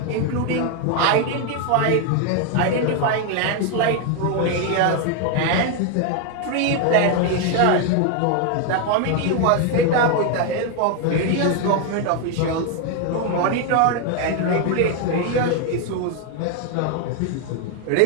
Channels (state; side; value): different; both; correlation 0.01